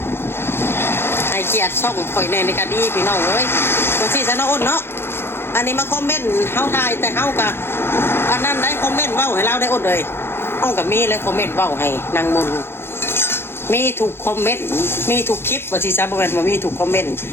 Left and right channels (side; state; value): right; late; 0.11 ms